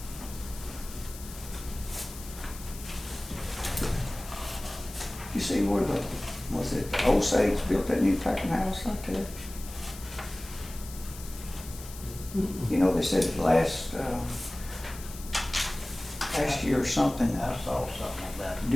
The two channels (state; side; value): noise; left; hiss, 15 dB below the sound